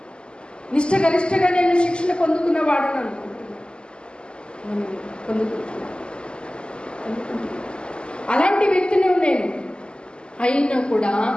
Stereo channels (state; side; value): late; right; 0.050 ms